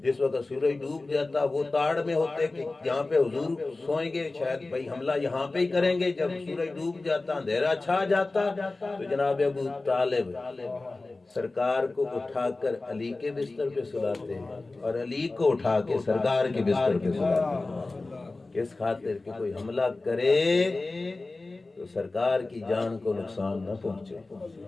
وقت سورج ڈوب جاتا وہ تاڑ میں ہوتے کہ یہاں پہ حضور سوئیں گے، شاید بھائی حملہ یہاں پہ ہی کریں گے۔ جب سورج ڈوب جاتا، اندھیرا چھا جاتا، تو جناب ابو طالب سرکار کو اٹھا کر علی کے بستر پہ سلاتے ہیں، اور علی کو اٹھا کے سرکار کے بستر پہ سلاتے ہیں، کس خاطر کہ کوئی حملہ کرے تو سرکار کی جان کو نقصان نہ پہنچے۔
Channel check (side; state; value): right; quieter; 3.3 dB